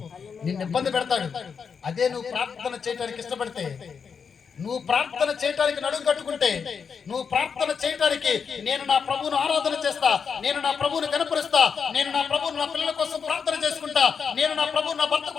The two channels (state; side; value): quieter; right; 6.2 dB